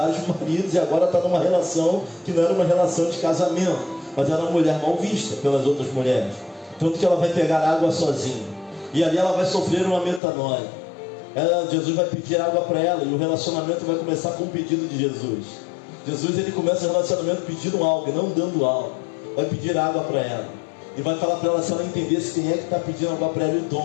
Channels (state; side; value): drops out; right; at 10.2 s